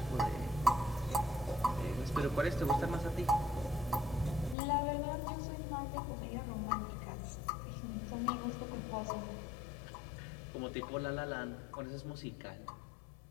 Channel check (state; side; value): drops out; right; at 4.5 s